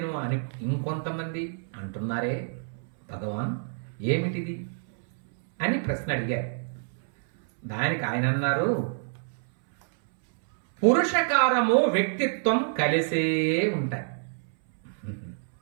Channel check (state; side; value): silent; left; 60 dB below the other